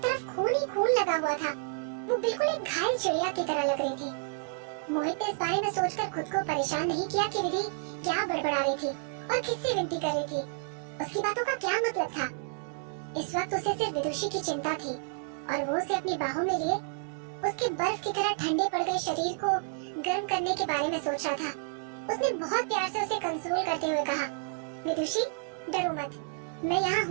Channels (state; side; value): silent; left; digital silence